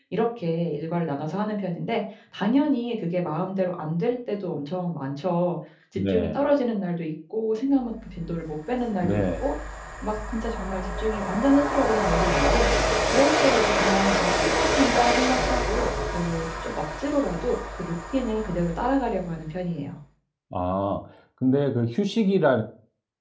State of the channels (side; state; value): both; identical; correlation 1.00